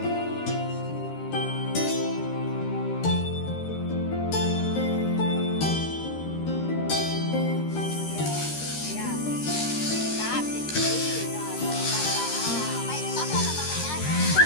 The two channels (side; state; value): right; late; 13 ms